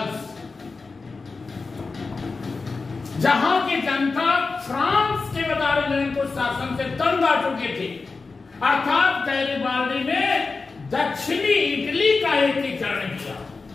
जहां की जनता फ्रांस के वदारेजन को शासन से तंग आ चुकी थी, अर्थात गैरिबाल्डी ने दक्षिणी इटली का एकीकरण किया।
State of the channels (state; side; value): quieter; right; 4.2 dB